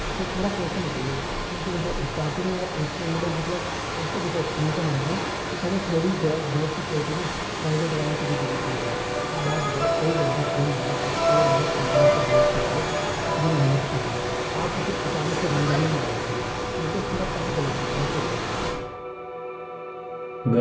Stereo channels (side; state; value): both; identical; correlation 1.00